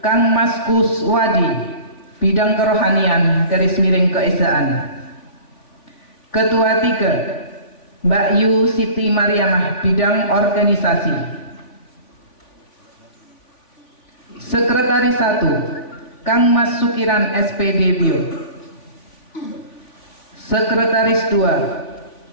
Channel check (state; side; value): late; right; 3.5 ms